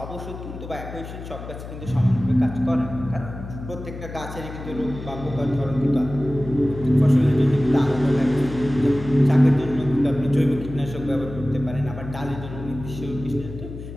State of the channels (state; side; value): noise; left; hum, 11 dB below the sound